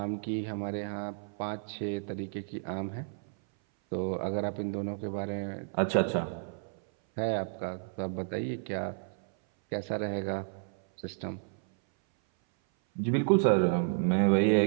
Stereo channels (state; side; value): silent; left; 57 dB below the other